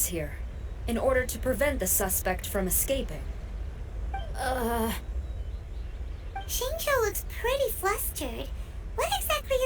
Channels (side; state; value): both; identical; correlation 1.00